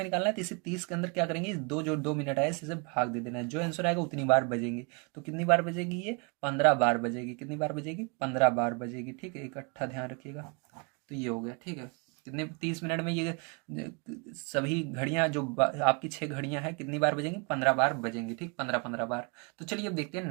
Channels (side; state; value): left; quieter; 33.0 dB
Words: निकालना है, तो इसे 30 के अंदर क्या करेंगे, दो जो 2 मिनट आए इसे भाग दे देना है, जो आंसर आएगा उतनी बार बजेंगे। तो कितनी बार बजेगी ये, 15 बार बजेगी। कितनी बार बजेगी, 15 बार बजेगी। ठीक है, इकट्ठा ध्यान रखिएगा। तो ये हो गया। ठीक है, कितने 30 मिनट में ये सभी घड़ियां जो आपकी 6 घड़ियां हैं कितनी बार बजेंगी, 15 बार बजेंगी। ठीक, 15 बार। तो चलिए अब देखते हैं